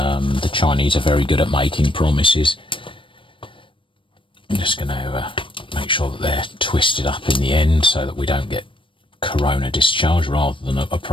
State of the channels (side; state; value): right; late; 0.25 ms